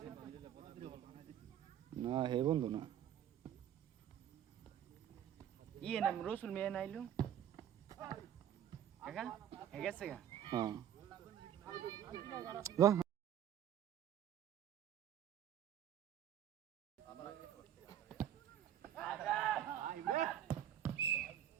না হে বন্ধু না ইয়ে নাম রসুল মেয়ে নাইলো কাকা হে গেছে গা হ্যাঁ যা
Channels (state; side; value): quieter; left; 10.3 dB